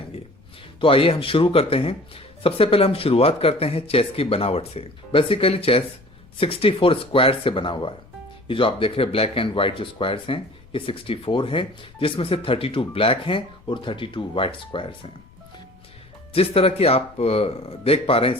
तो आइए हम शुरू करते हैं। सबसे पहले हम शुरुआत करते हैं चेस की बनावट से। बेसिकली चेस 64 स्क्वायर से बना हुआ है। ये जो आप देख रहे हैं ब्लैक एंड व्हाइट जो स्क्वायर्स हैं, ये 64 हैं, जिसमें से 32 ब्लैक हैं और 32 व्हाइट स्क्वायर्स हैं। जिस तरह की आप देख पा रहे हैं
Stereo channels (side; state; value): left; noise; rumble, 26 dB below the sound